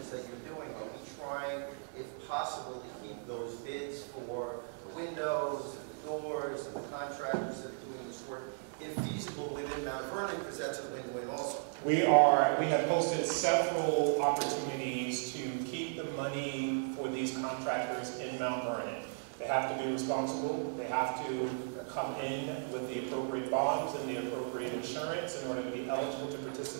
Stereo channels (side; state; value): left; silent; digital silence